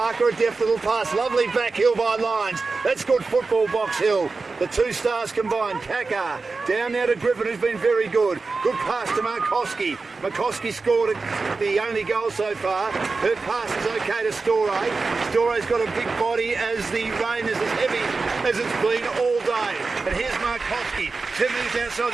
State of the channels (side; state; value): left; quieter; 4.0 dB